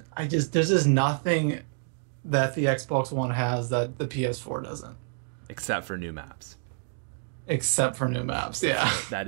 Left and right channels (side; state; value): left; silent; digital silence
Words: there's just nothing that the Xbox One has that the PS4 doesn't. Except for new maps. Yeah.